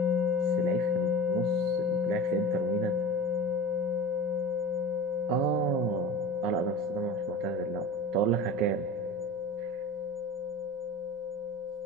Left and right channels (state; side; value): normal; both; correlation 0.33